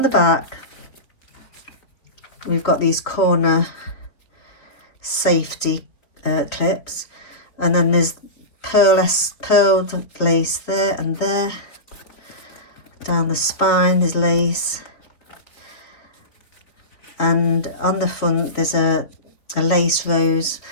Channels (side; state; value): right; late; 3.8 ms